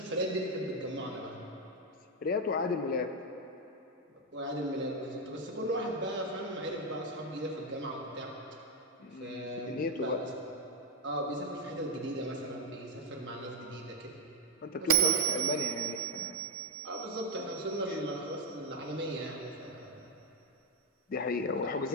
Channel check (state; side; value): normal; both; correlation 0.07